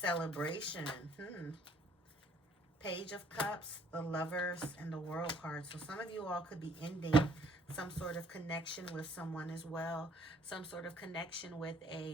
Page of Cups, the Lovers, and the World card. So some of you all could be ending some sort of connection with someone as well. Some sort of connection with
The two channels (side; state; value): both; normal; correlation 0.61